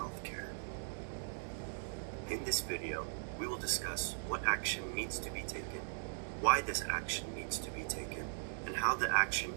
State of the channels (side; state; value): left; silent; digital silence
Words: In this video, we will discuss what action needs to be taken, why this action needs to be taken, and how the action